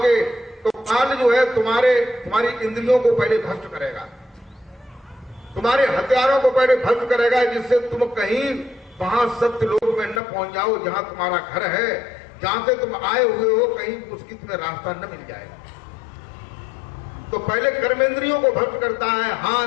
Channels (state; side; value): drops out; right; at 10.2 s